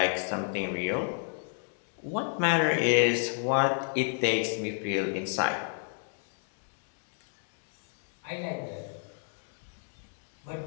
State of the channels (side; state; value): right; silent; 57 dB below the other